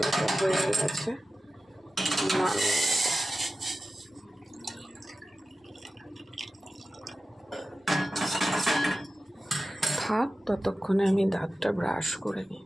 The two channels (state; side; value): normal; both; correlation 0.94